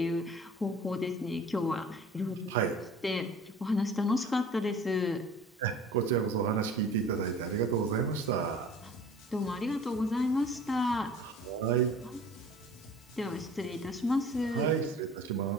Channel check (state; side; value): normal; both; correlation 0.46